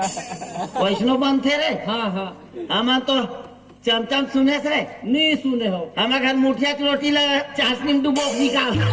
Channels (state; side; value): identical; both; correlation 1.00